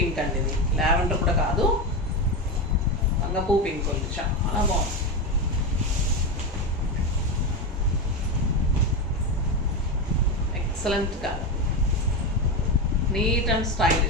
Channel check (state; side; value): normal; both; correlation 0.15